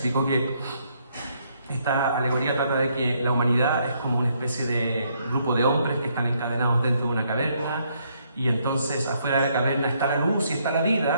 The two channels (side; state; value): both; inverted; correlation -0.72